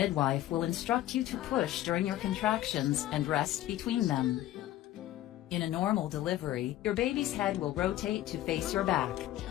will instruct you to push during your contractions and rest between them. In a normal delivery, your baby's head will rotate to face your back.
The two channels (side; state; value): right; quieter; 14.1 dB